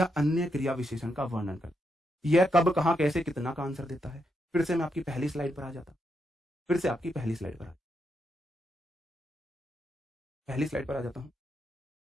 अन्य क्रिया विशेषण का वर्णन करता है। यह कब, कहां, कैसे, कितना का आंसर देता है। फिर से मैं आपकी पहली स्लाइड पर आ जाता, फिर से आपकी पहली स्लाइड पर आ जाता हूं।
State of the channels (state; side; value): normal; both; correlation 0.81